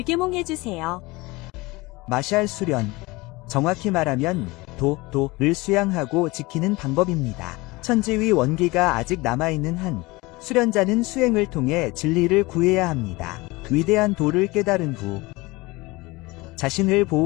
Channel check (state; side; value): quieter; right; 22.6 dB